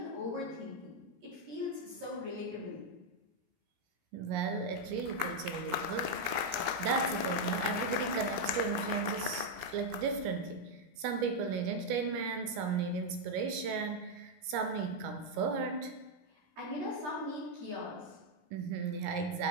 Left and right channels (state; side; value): late; left; 17 ms